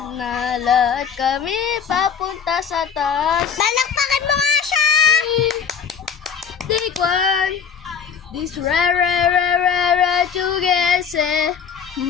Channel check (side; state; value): right; quieter; 6.9 dB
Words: Nalad kami papunta sa taas. Balakpakan mo nga siya! Take one. This rare together.